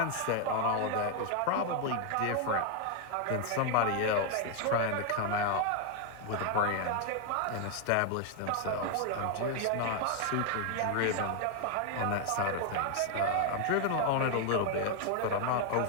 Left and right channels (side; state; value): both; different; correlation 0.01